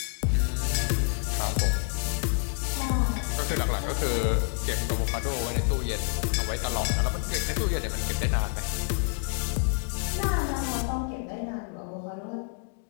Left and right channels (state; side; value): silent; right; 56 dB below the other